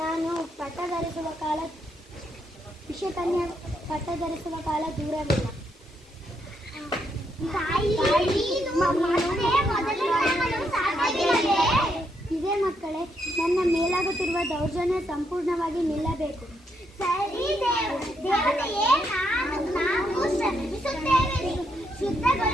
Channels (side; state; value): both; normal; correlation 0.77